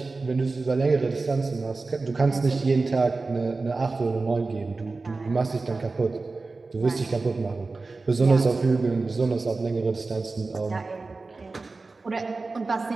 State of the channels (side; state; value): left; quieter; 3.7 dB